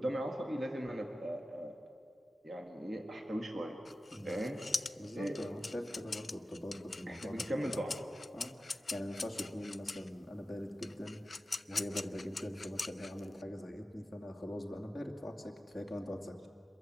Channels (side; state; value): both; normal; correlation 0.94